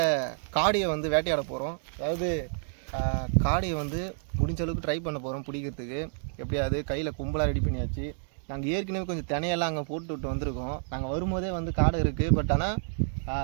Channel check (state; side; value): silent; left; digital silence